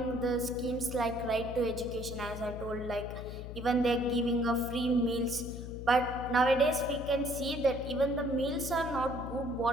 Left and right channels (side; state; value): left; noise; hum, 9 dB below the sound